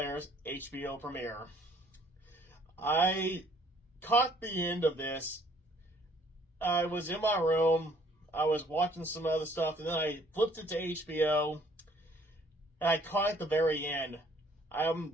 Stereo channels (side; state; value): both; normal; correlation 0.60